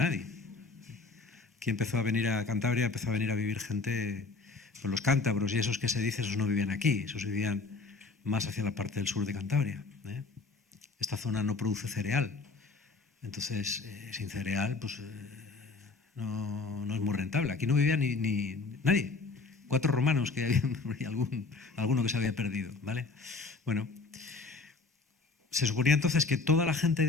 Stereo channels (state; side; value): quieter; right; 4.1 dB